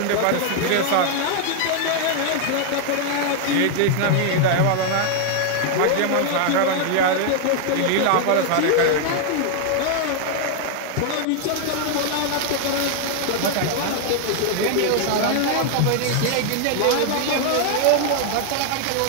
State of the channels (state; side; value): different; both; correlation 0.00